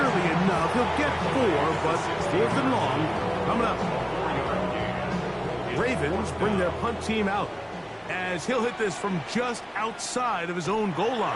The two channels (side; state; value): both; identical; correlation 1.00